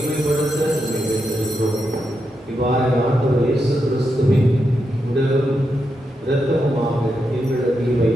வேண்டியிருக்கிறோம். இவ்வாறு ஆண்டவர் இயேசு கிறிஸ்துவின் உடலும் இரத்தமுமாக எங்களுக்கு இவை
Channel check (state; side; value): normal; both; correlation 0.85